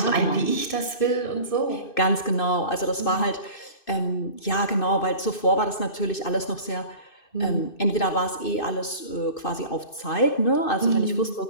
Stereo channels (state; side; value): late; right; 2.6 ms